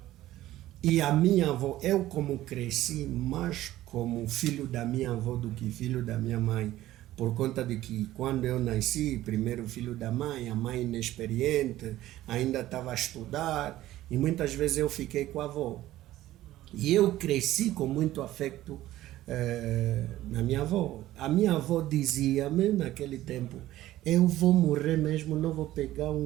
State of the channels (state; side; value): quieter; left; 14.9 dB